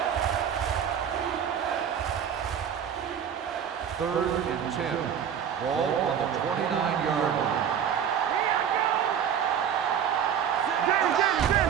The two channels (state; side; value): quieter; left; 8.5 dB